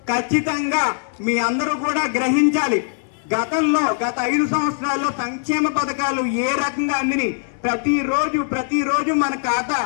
ఖచ్చితంగా మీ అందరూ కూడా గ్రహించాలి. గత 5 సంవత్సరాల్లో సంక్షేమ పథకాలు ఏ రకంగా అందిని ప్రతిరోజు మన ఖాతా,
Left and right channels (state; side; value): silent; right; 65 dB below the other